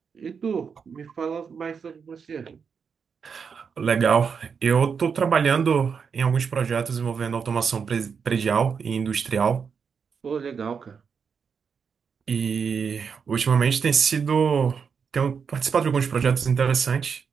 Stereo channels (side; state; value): left; quieter; 6.2 dB